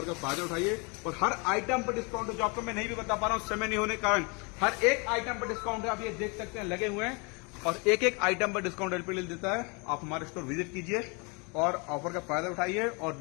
का फायदा उठाइए। और हर आइटम पर डिस्काउंट है, जो आपको मैं नहीं भी बता पा रहा हूं समय नहीं होने के कारण। हर एक आइटम पर डिस्काउंट है, आप ये देख सकते हैं लगे हुए हैं, और एक एक आइटम पर डिस्काउंट एलपीडी देता है। आप हमारे स्टोर विजिट कीजिए और ऑफर का फायदा उठाइए और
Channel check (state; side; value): quieter; right; 31.4 dB